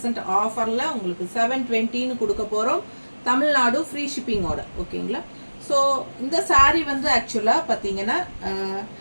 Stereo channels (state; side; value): inverted; both; correlation -1.00